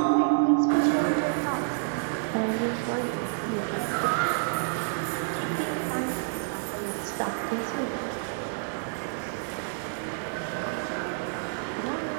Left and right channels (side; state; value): left; silent; digital silence